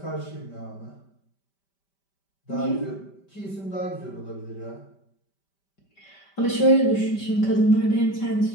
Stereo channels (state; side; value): late; right; 5.1 ms